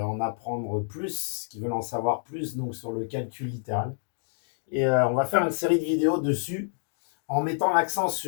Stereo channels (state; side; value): silent; right; digital silence